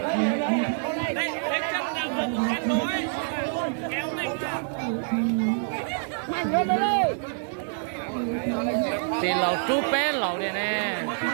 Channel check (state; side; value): silent; left; digital silence